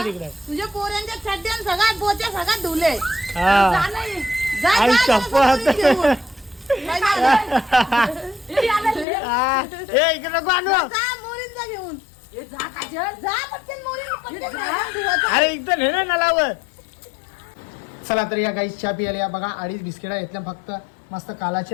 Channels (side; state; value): right; drops out; at 9.1 s